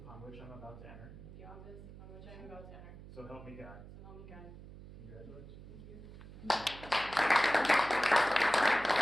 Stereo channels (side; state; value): right; noise; hum, 15 dB below the sound